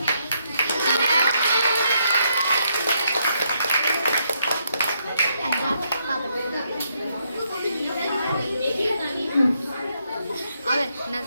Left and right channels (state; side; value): inverted; both; correlation -0.76